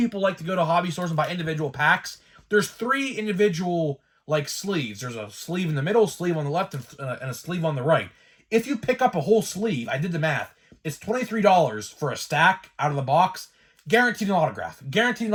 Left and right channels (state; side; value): identical; both; correlation 1.00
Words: like to go to hobby stores and buy individual packs. There's 3 individual, sleeves. There's a sleeve in the middle, sleeve on the left, and a sleeve on the right. If you pick up a whole sleeve, I did the math, it's $23 for a stack out of the box. Guaranteed an autograph. Guaranteed an